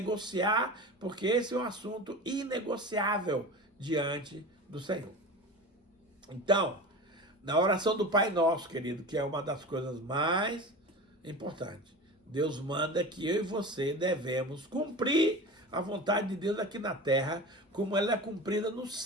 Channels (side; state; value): both; normal; correlation 0.32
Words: porque esse é um assunto inegociável diante do Senhor. Então, na oração do Pai Nosso, querido, que é uma das coisas mais importantes, Deus manda que eu e você devemos cumprir a vontade de Deus aqui na terra, como ela é cumprida no